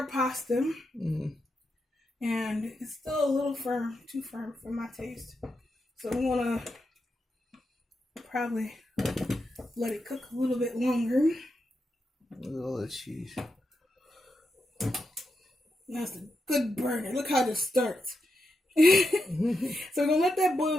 pasta. And it's still a little firm, too firm for my taste. So I'm gonna probably let it cook a little bit longer. Look at all that cheese. That's a good burner. Look how this starts. So we're gonna let that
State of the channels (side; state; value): both; normal; correlation 0.86